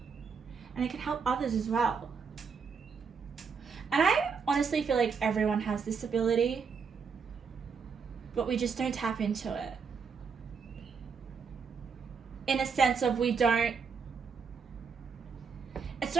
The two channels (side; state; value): left; quieter; 5.7 dB